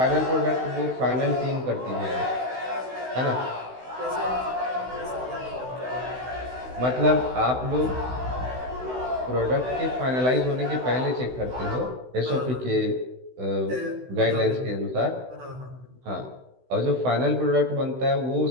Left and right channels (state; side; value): late; left; 16 ms